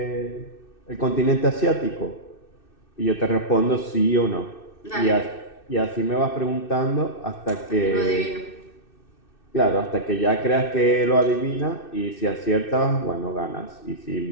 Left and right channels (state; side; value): late; right; 2.6 ms